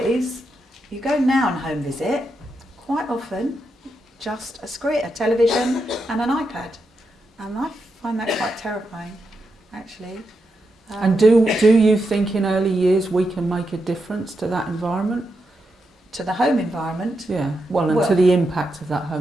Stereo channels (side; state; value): both; normal; correlation 0.85